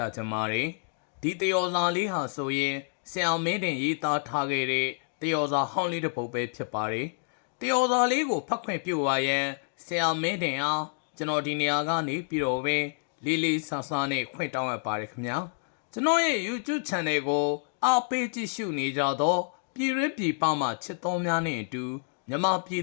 ားချင်ပါတယ်ဒီတယောဇာလေးဟာဆိုရင်ဆရာမင်းတင်ရေးသားထားခဲ့တဲ့တယောဇာဟောင်းလေးတစ်ပုဒ်ပဲဖြစ်ပါတယ်တယောဇာလေးကိုဖတ်ခွင့်ပြုပါရန်ဆရာမင်းတင်အားကျွန်တော်ဒီနေရာကနေပြီးတော့ပဲလေးလေးဆဆနဲ့ခွင့်တောင်းရပါတယ်ခင်ဗျာကျွန်တော်ရဲ့ YouTube Channel ကိုအားပေးကြည့်ရှုနေကြတော့ပြည်ရင်းပြည်ပမှာချစ်တော်များနဲ့အတူမြန်မာပြည်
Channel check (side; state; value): right; silent; digital silence